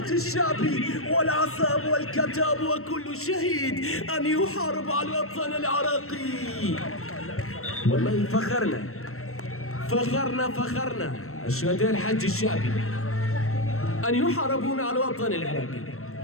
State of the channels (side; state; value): right; late; 0.63 ms